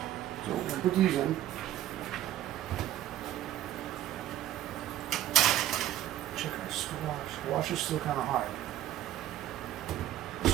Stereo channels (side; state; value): left; quieter; 12.8 dB